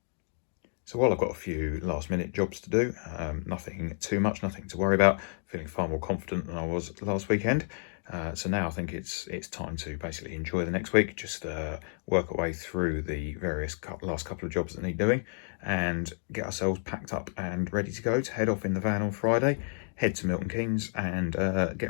So while I've got a few last minute jobs to do, nothing too much, nothing to worry about, feeling far more confident than I was last weekend. So now I think it's time to basically enjoy the next week, just work our way through the various last couple of jobs that need doing and get ourselves packed up and ready to go to head off in the van on Friday, head to Milton Keynes and get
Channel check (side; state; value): right; silent; 57 dB below the other